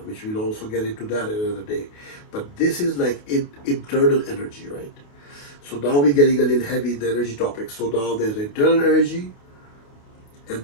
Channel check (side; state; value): right; late; 28 ms